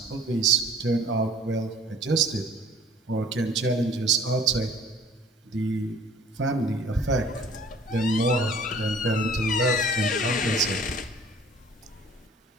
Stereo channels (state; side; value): normal; both; correlation 0.51